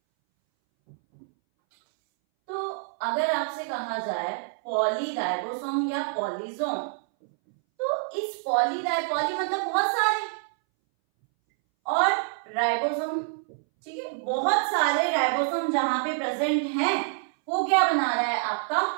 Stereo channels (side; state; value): left; silent; 60 dB below the other